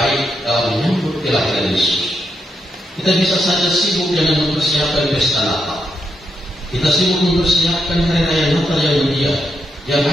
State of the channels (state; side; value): normal; both; correlation 0.82